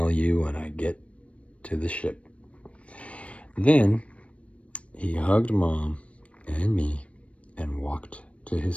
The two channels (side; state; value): right; late; 0.063 ms